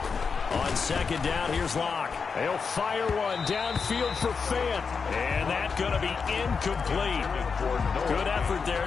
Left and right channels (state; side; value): quieter; right; 5.4 dB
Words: On 2nd down, here's Locke. They'll fire one downfield for Fant. And that's going to be incomplete. Good effort there,